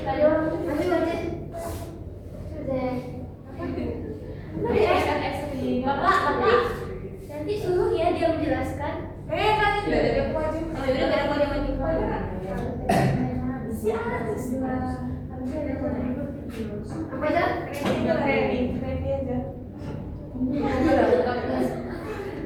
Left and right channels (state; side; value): identical; both; correlation 1.00